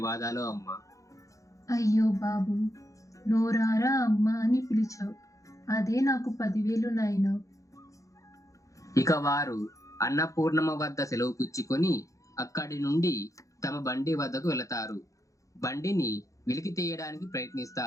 అమ్మా. అయ్యో బాబు, నోరారా అమ్మ అని పిలిచావు. అదే నాకు 10,000 నాయన. ఇక వారు అన్నపూర్ణమ్మ వద్ద సెలవు పుచ్చుకొని అక్కడి నుండి తమ బండి వద్దకు వెళతారు. బండిని వెలికి తీయడానికి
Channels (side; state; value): right; late; 0.16 ms